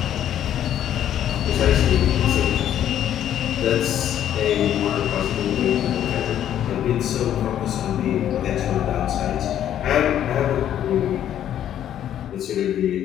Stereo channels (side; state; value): right; quieter; 10.8 dB